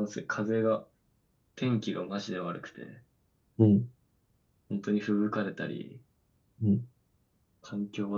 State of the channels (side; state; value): both; identical; correlation 1.00